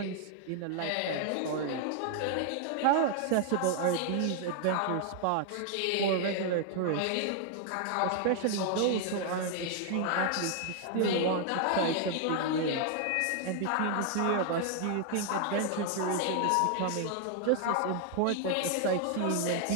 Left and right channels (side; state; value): both; different; correlation 0.00